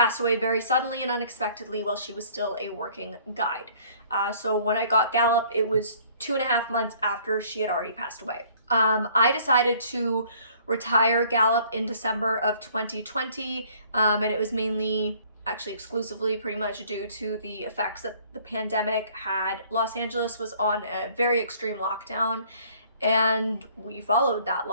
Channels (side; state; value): both; inverted; correlation -0.57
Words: away very suddenly and unexpectedly while she was still a working guide. So when I got Gallop, it was 2.5 months after she had already passed away. I decided to retire Gallop in December of 2020, and it was mainly, actually exclusively pretty much due to the effects that the pandemic had. Los Angeles was on a very extreme lockdown, and we followed that